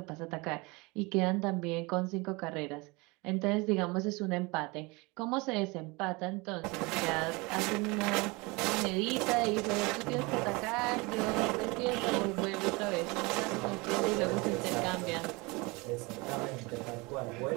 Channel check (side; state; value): left; quieter; 25.9 dB